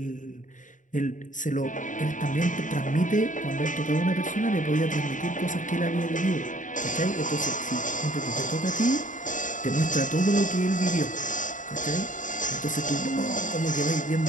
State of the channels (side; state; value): right; late; 0.37 ms